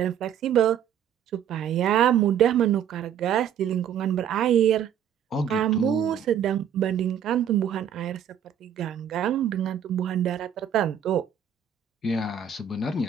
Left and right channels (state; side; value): quieter; left; 8.8 dB